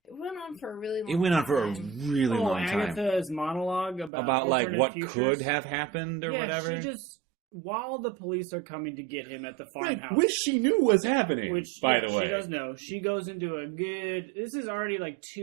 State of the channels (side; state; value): left; drops out; at 4.1 s